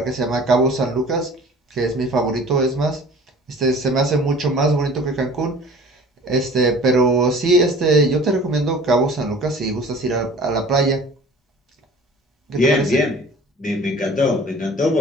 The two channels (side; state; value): both; normal; correlation 0.46